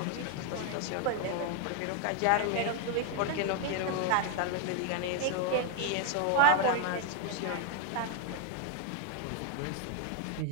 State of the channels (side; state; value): both; different; correlation 0.01